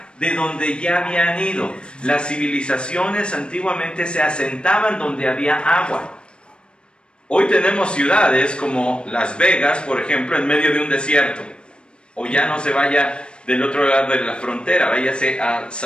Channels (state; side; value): late; right; 0.055 ms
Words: de donde ya habían ido. Las civilizaciones antiguamente se asentaban donde había agua. Hoy tenemos ciudades como Las Vegas, por ejemplo, en medio de un desierto. O ya no se vaya del otro lado de la frontera, váyase a